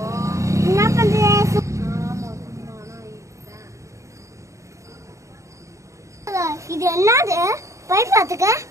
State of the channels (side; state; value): left; late; 0.15 ms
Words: இது என்னது? பைப் பாத்துக்க.